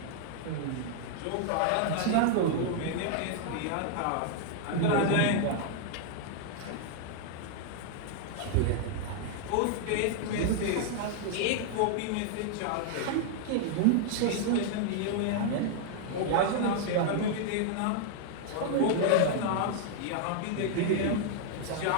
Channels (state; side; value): different; both; correlation -0.01